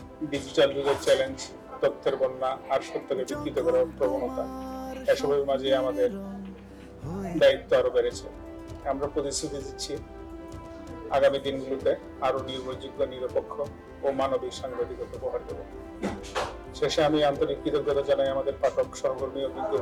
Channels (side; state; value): both; identical; correlation 1.00